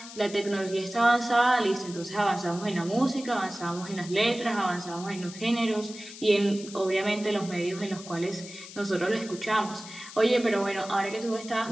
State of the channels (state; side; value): noise; left; hiss, 14 dB below the sound